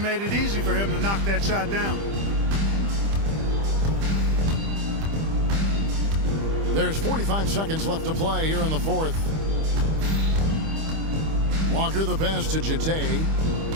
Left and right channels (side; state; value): left; late; 25 ms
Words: it easy for him to knock that shot down. There's 45 seconds left to play here in the 4th. Walker the pass to Jete.